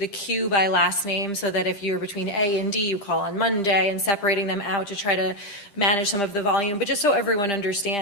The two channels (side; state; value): right; late; 10 ms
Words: queue by last name so that if you're between A and D, you call on Monday, and separating them out to try to manage some of the volume. But just so everyone